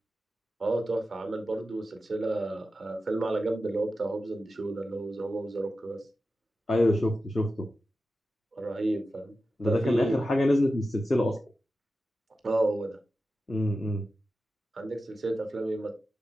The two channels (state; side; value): normal; both; correlation 0.92